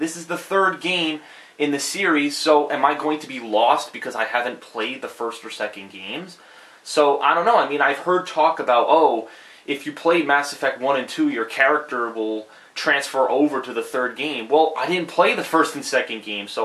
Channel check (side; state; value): both; identical; correlation 1.00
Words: is the third game in the series, so am I going to be lost because I haven't played the first or second games? So, I don't know. I mean, I've heard talk about, oh, if you play Mass Effect 1 and 2, your character will transfer over to the third game. Well, I didn't play the first and second game,